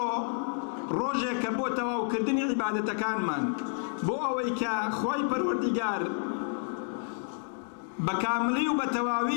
ڕۆژێک کە بۆ تەواوکردنی عیبادەتەکانمان، بۆ ئەوەی کە خوای پەروەردیگار بە کاملی و بە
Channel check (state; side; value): silent; right; 58 dB below the other